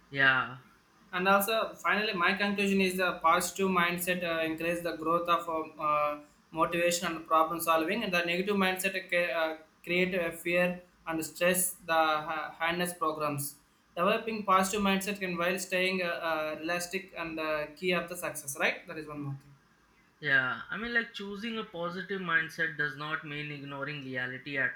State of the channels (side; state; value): both; identical; correlation 1.00